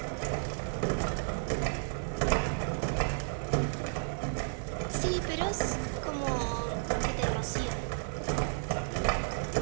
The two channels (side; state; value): left; silent; digital silence